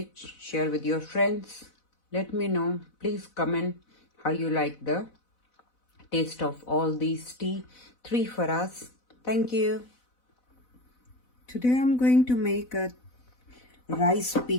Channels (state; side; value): late; right; 4.0 ms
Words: share with your friends. Let me know. Please comment how you like the taste of all these tea. 3 for us. Thank you. Today I'm going to make a rice